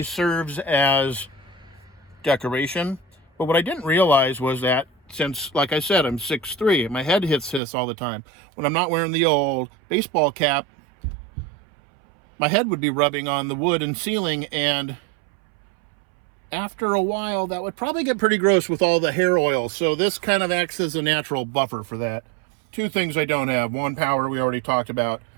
serves as decoration, but what I didn't realize was that since, like I said, I'm 6'3", my head hits this all the time. When I'm not wearing the old baseball cap, my head would be rubbing on the wood and ceiling, and after a while, that would probably get pretty gross with all the hair oil. So this kind of acts as a natural buffer for that. Two things I don't have. One, power, we already talked about.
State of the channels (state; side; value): drops out; left; at 7.6 s